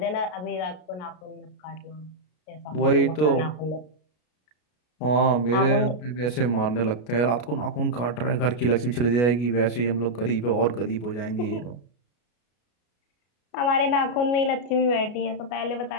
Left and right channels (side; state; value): right; late; 33 ms